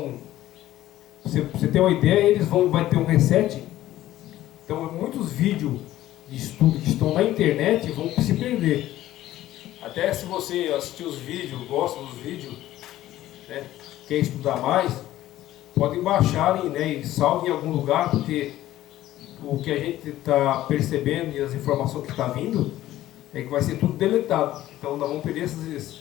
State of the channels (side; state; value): right; quieter; 14.3 dB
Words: você tem uma ideia, vai ter um reset. Então, muitos vídeos de estudo que estão na internet vão se perder. Até se você assistir os vídeos, gosta dos vídeos, né, quer estudar mais, podem baixar, né, e salve em algum lugar, porque o que a gente está percebendo e as informações que estão vindo é que vai ser tudo deletado. Então nós vamos perder esses